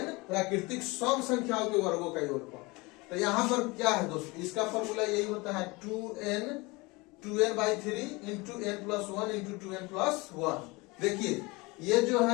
प्राकृतिक सम संख्याओं के वर्गों का योगफल। तो यहाँ पर क्या है दोस्तों, इसका फॉर्मूला यही होता है 2n/3 into n plus 1 into 2n plus 1। देखिए ये जो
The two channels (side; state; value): right; quieter; 24.7 dB